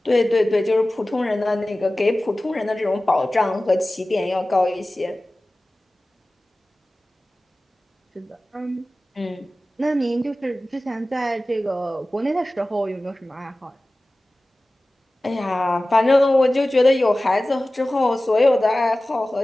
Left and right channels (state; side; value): normal; both; correlation 0.97